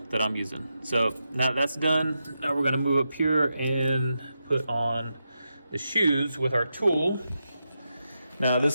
that I'm using. So now that's done, now we're gonna move up here and put on the shoes with our tool. Now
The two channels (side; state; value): both; inverted; correlation -0.87